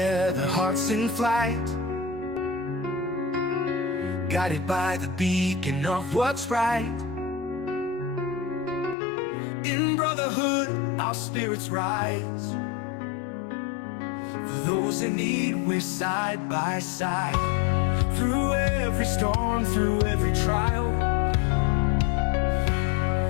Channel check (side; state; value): right; drops out; at 9.0 s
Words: hearts in flight, guided by the beacon of what's right. In brotherhood, our spirits rise. For those in need, we're side by side. Through every storm, through every trial,